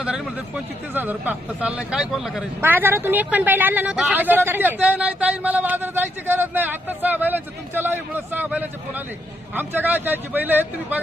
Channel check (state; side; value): normal; both; correlation 0.77